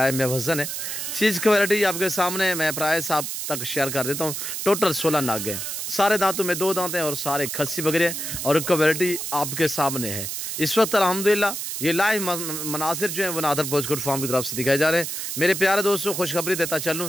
में वज़न है। चीज़ क्वालिटी आपके सामने मैं प्राइस आप तक शेयर कर देता हूँ। टोटल 16 नाग हैं, सारे दांतों में 2 दांत हैं और सारे खस्सी बकरे हैं और क्वालिटी आपके सामने है। इस वक्त अल्हम्दुलिल्लाह ये लाइव मनासिर जो हैं वो नादर बलोच कोट फार्म की तरफ से दिखाए जा रहे हैं। मेरे प्यारे दोस्तों, खुशखबरी देता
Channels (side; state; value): right; noise; hiss, 4 dB below the sound